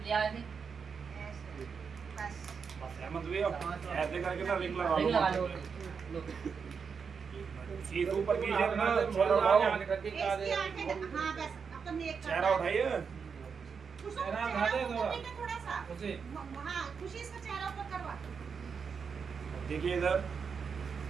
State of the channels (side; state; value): left; quieter; 6.0 dB